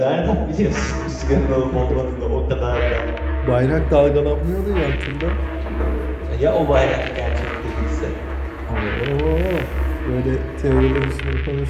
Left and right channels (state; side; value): identical; both; correlation 1.00